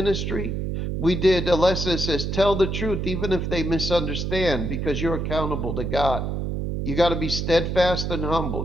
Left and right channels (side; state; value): right; noise; hum, 2 dB below the sound